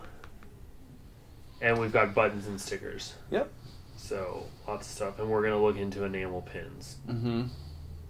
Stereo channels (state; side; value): identical; both; correlation 1.00